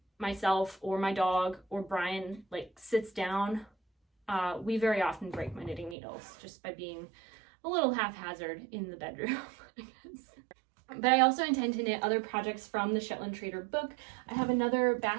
myself or my dog or Brian like sits down, we very often break my knitting needles just by being a little haphazard in the bedroom, I guess. But I also intend to knit other projects from the Shetland Trader book. I have another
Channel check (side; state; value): left; drops out; at 6.0 s